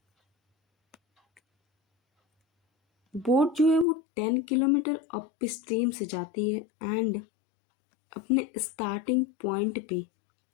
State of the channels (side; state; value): right; drops out; at 3.9 s